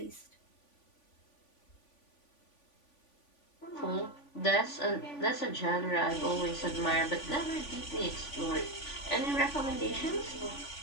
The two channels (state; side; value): late; right; 3.5 ms